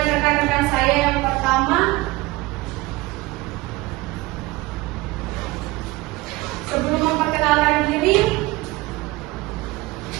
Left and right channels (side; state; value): left; quieter; 21.0 dB